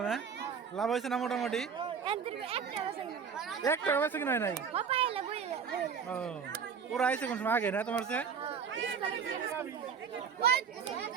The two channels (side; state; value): left; quieter; 6.5 dB